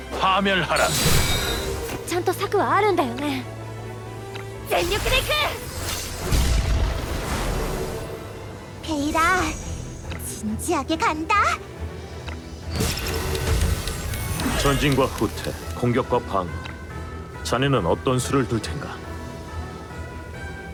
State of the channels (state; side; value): identical; both; correlation 1.00